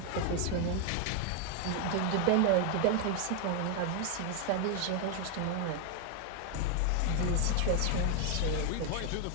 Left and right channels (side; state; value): both; different; correlation 0.01